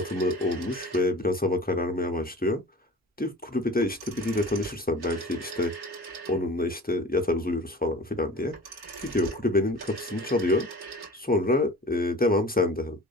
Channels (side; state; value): both; normal; correlation 0.41